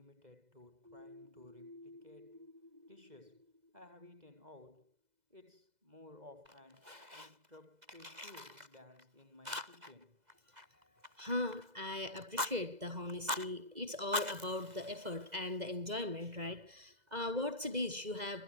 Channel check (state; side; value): late; left; 2.0 ms